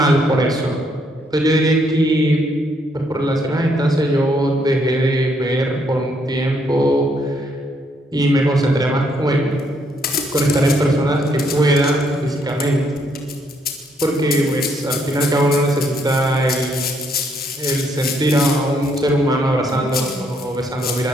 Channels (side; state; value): both; normal; correlation 0.72